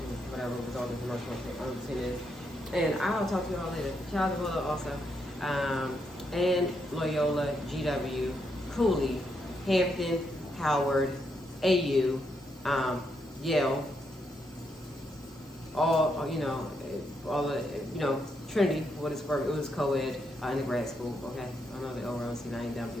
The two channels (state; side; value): normal; both; correlation 0.79